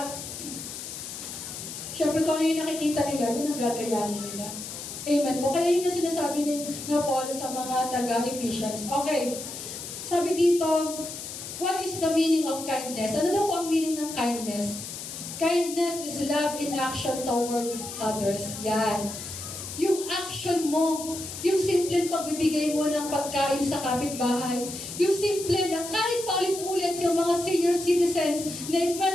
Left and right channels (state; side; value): noise; left; hiss, 9 dB below the sound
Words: Siyempre, kung ano yung nakikita nila, yun ang gagayahin nila. Amen po. Kaya yun yung sinasabi ni Paul sa mga taga-Ephesians. Okay. Sabi dito, what is the meaning of kindness? Ano daw po ang meaning ng kindness? Kindness is love in action toward others. Yan. Yung action mo, yung simpleng pagbibigay mo ng pagkain sa kapitbahay, yung simple na kahit paulit-ulit yung mga senior citizens na